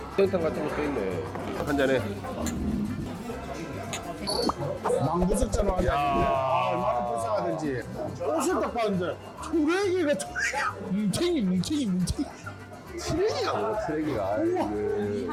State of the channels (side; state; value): both; identical; correlation 1.00